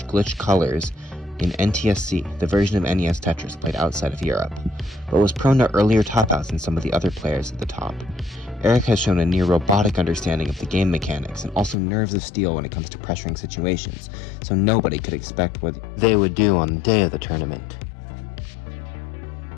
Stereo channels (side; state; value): right; drops out; at 11.8 s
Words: glitch colors in NTSC, the version of NES Tetris played outside of Europe, but was prone to earlier top-outs than some of the other players at the top. Eric has shown a near-robotic understanding of the game mechanics and also nerves of steel when it comes to pressuring situations, so nobody could expect what they would do on the day of the tournament.